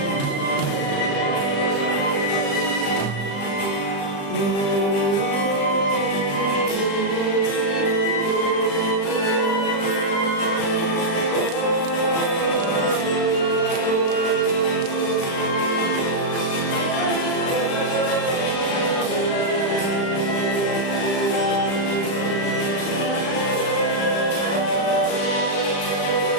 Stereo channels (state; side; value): late; right; 35 ms